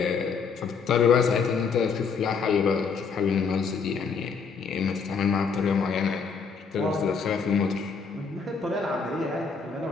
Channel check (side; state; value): right; quieter; 5.5 dB